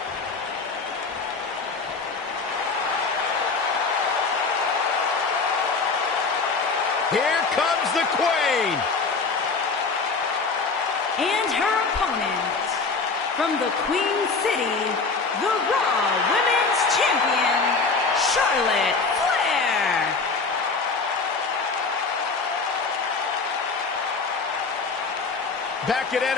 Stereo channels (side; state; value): right; quieter; 4.4 dB